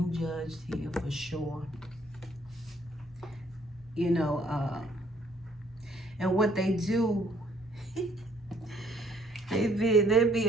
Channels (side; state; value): both; normal; correlation 0.63